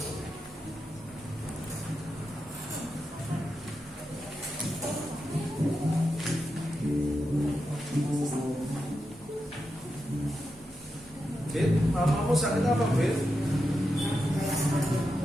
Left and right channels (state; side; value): normal; both; correlation 0.88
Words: Fit, mamamu sakit apa, Fit?